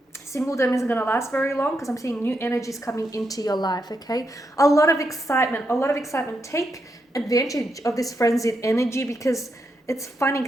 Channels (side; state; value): both; normal; correlation 0.82